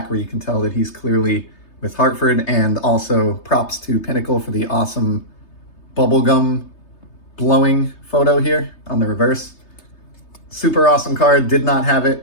where you can tell that he's clearly with Hartford, and also props to Pinnacle for the awesome bubblegum blowing photo here on the reverse. Super awesome card, did not have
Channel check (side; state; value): right; late; 3.3 ms